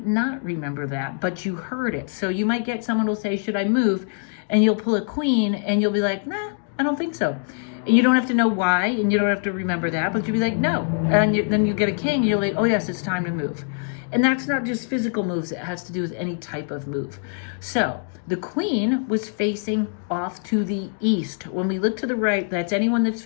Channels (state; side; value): silent; right; 63 dB below the other